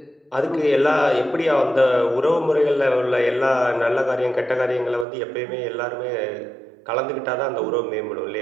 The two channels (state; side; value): drops out; left; at 5.1 s